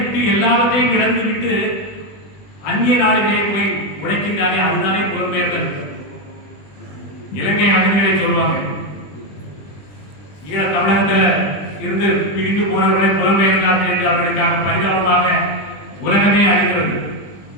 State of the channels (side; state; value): right; late; 20 ms